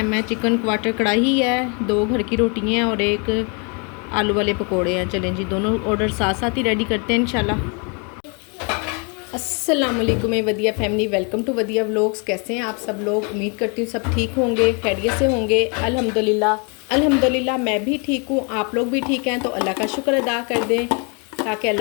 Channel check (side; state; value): right; quieter; 35.2 dB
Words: है। चिकन क्वार्टर कढ़ाई है, 2 घर की रोटियाँ हैं और एक आलू वाले पकोड़े हैं। चलें जी दोनों ऑर्डर साथ साथ ही रेडी करते हैं इंशाल्लाह। अस्सलाम वालेकुम वदिया फैमिली, वेलकम टू वदिया व्लॉग्स। कैसे हैं आप सब लोग? उम्मीद करती हूँ सब ठीक होंगे, खैरियत से होंगे। अल्हम्दुलिल्लाह मैं भी ठीक हूँ, आप लोग भी ठीक हैं। तो अल्लाह का शुक्र अदा कर दें ताकि